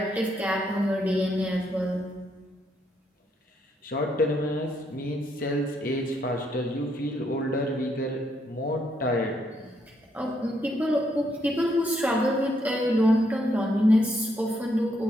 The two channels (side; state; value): both; normal; correlation 0.75